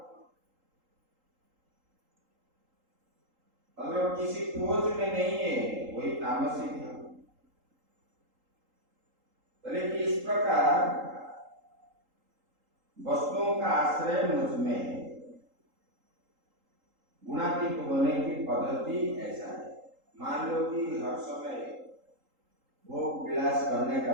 अगर किसी खोज में नहीं है वही तामसिक है। बोले कि इस प्रकार वस्तुओं का आश्रय मुझ में है। गुणातीत होने की पद्धति ऐसा है। मान लो कि हर समय भोग विलास करने का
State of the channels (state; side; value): late; left; 3.8 ms